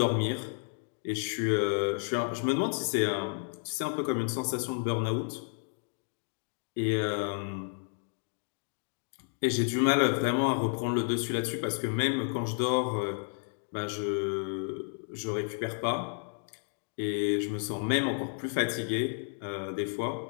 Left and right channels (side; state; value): right; silent; 57 dB below the other